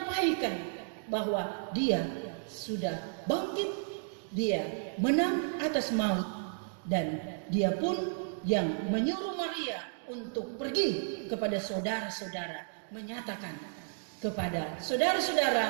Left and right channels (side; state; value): left; silent; digital silence